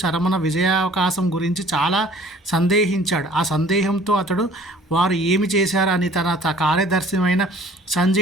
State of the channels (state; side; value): normal; both; correlation 0.52